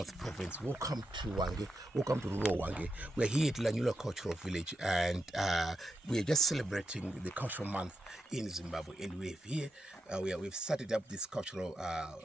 Province. Welcome to Wange. Welcome to rural Wange. We're here at Lanyula Cultural Village, and we're just celebrating the Cultural Month in Zimbabwe. And we've started up this cultural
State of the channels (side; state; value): both; normal; correlation 0.86